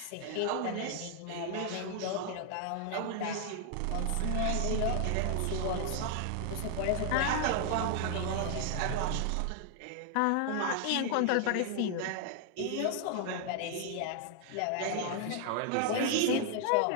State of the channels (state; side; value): different; both; correlation 0.00